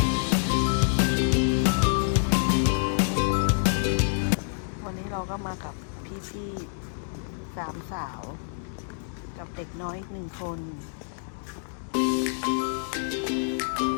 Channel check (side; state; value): right; silent; digital silence